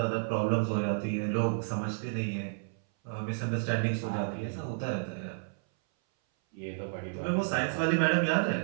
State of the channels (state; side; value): silent; left; 57 dB below the other